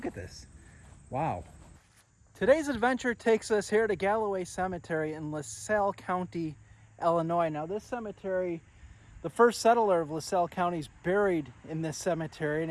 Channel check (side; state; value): both; identical; correlation 1.00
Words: at this. Wow. Today's adventure takes us here to Galloway Cemetery in LaSalle County, Illinois. Now this cemetery, the first settler of LaSalle County is buried in this cemetery,